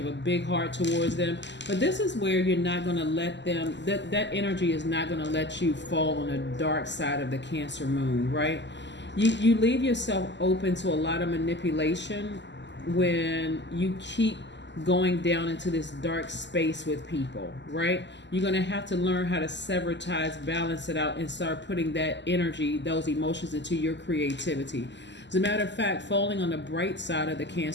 have a big heart towards them. But this is where you're not going to let them, that energy is not going to let you fall on the dark side of the Cancer moon, right? You leave yourself open to a lot of manipulation when you keep going down into this dark space with people, right? You're going to have to learn how to sever ties, balance it out, and start putting that energy, those emotions, into your creativity. As a matter of fact, falling on the bright side of the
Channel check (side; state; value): right; late; 0.52 ms